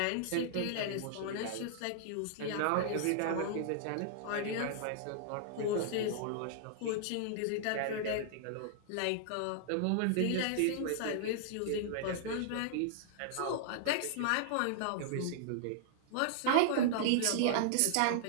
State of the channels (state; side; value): different; both; correlation -0.01